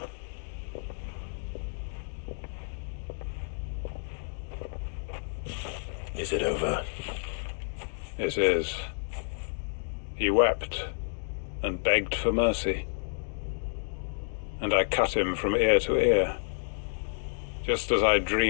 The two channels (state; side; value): silent; right; digital silence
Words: Is it over? It is. He wept and begged for mercy. And I cut him from ear to ear. Just as I